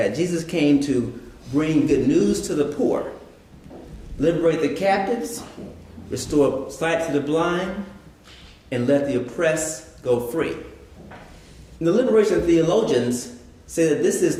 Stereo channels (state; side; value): identical; both; correlation 1.00